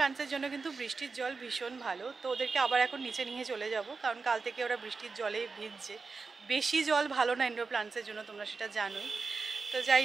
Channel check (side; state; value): left; quieter; 4.4 dB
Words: জন্য কিন্তু বৃষ্টির জল ভীষণ ভালো। তো ওদেরকে আবার এখন নিচে নিয়ে চলে যাব, কারণ কাল থেকে ওরা বৃষ্টির জলে ভিজছে। বেশি জল ভালো না ইনডোর প্লান্টসের জন্য, তোমরা সেটা জানোই। তো